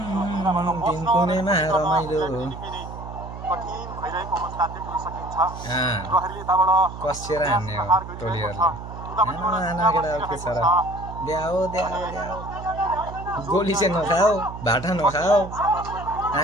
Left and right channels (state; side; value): noise; right; hum, 11 dB below the sound